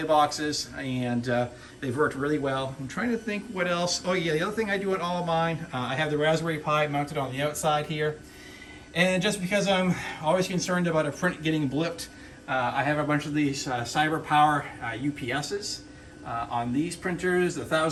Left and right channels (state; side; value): identical; both; correlation 1.00